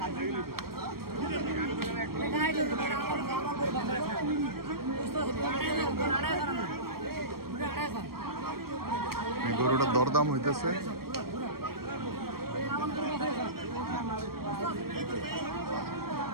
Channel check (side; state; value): left; late; 0.94 ms